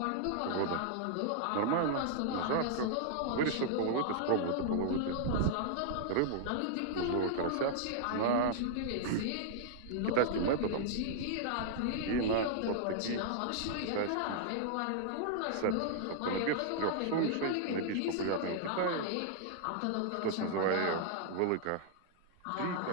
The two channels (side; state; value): both; different; correlation -0.01